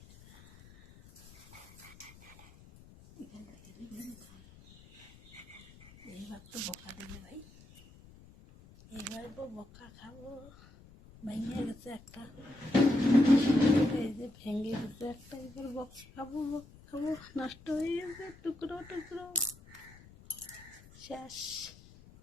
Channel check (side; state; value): left; noise; rumble, 22 dB below the sound